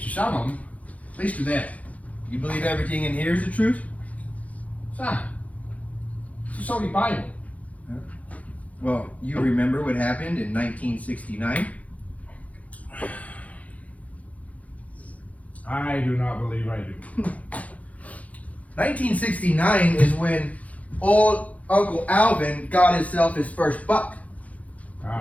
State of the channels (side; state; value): right; late; 0.069 ms